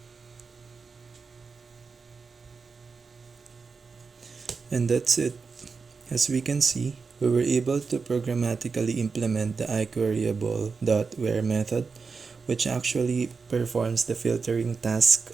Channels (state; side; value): quieter; left; 4.9 dB